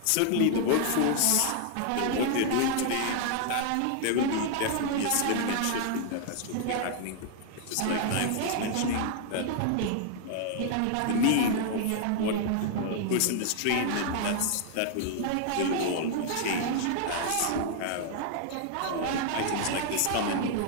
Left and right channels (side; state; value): both; different; correlation 0.00